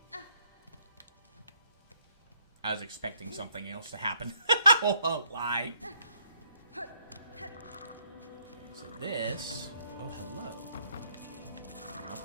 I was expecting something else to happen. I won't lie. So this... Oh, hello. I'll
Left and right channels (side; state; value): both; inverted; correlation -0.70